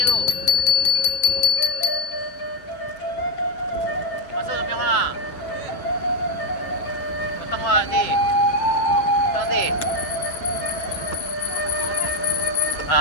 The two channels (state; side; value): late; right; 7.7 ms